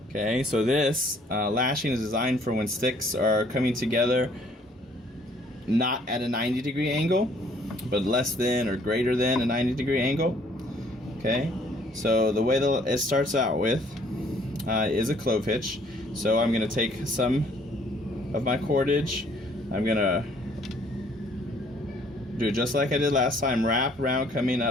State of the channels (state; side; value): normal; both; correlation 0.61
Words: Okay, so this lashing is designed for when sticks are coming together not at a 90-degree angle, but less than or greater than a 90-degree angle. Okay, so the way that it starts out with is a clove hitch. So I'm going to take some of my cordage. I'm going to do just like I did last time, wrap around coming